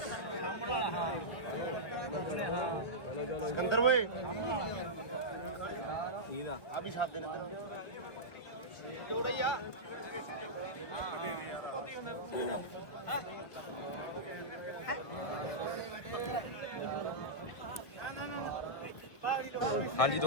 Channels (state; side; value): late; right; 1.7 ms